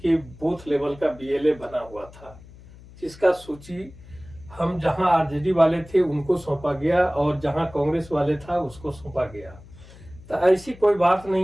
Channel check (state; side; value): noise; left; hum, 20 dB below the sound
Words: बूथ लेवल का बीएलए बना हुआ था, जिसका सूची हम जहां आरजेडी वाले थे उनको सौंपा गया और जहां कांग्रेस वाले था उसको सौंपा गया। तो ऐसी कोई बात